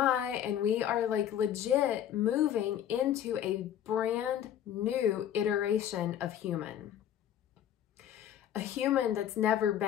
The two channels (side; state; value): right; quieter; 10.4 dB